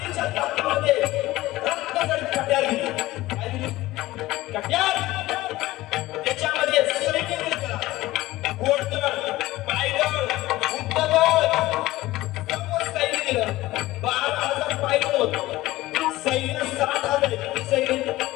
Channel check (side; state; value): right; quieter; 17.6 dB